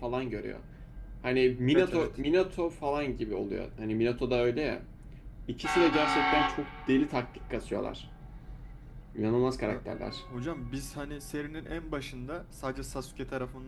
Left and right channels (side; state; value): both; identical; correlation 1.00